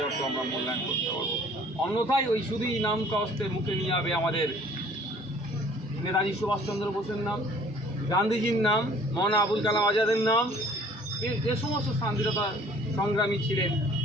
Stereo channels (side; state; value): both; normal; correlation 0.53